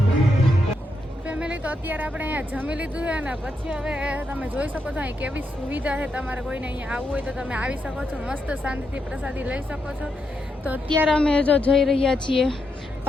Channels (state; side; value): normal; both; correlation 0.82